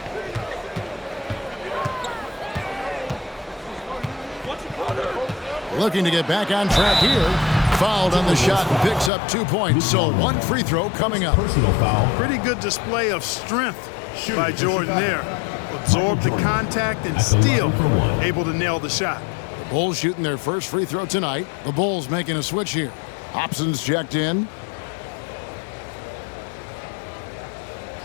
Looking to get back on track here. Fouled on the shot and picks up 2 points. So one free throw coming up. Personal foul. Pretty good display of strength by Jordan there. Absorbed the contact and still able to nail the shot. The Bulls shooting their first free throw tonight. The Bulls making a switch here. Hobson's checked in.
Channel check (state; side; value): drops out; right; at 9.1 s